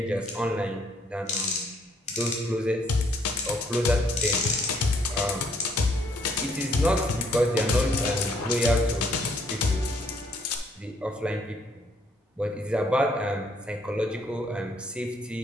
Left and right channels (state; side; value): normal; both; correlation 0.67